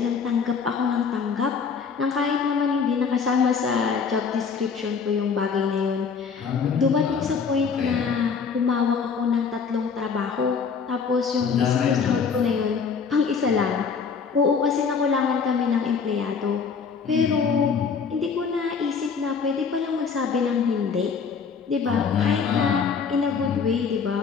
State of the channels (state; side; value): quieter; right; 5.8 dB